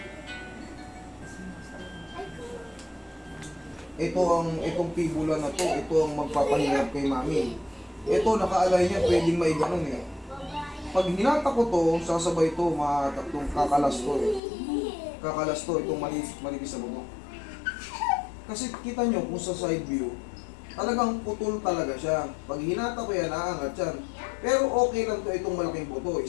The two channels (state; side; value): drops out; right; at 14.4 s